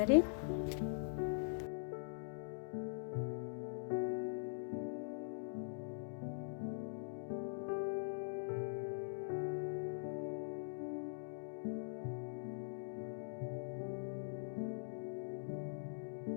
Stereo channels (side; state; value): right; silent; digital silence